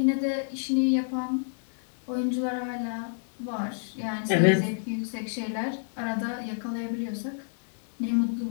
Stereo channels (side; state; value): right; silent; digital silence